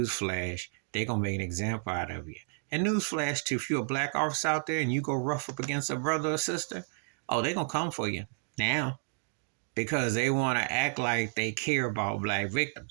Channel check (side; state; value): left; silent; digital silence